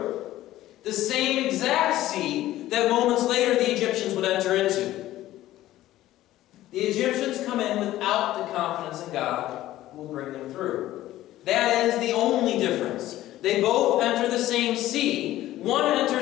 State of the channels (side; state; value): right; quieter; 14.8 dB